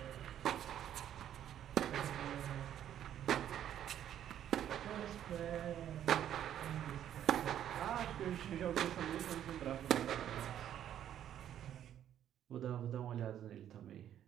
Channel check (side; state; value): left; quieter; 10.6 dB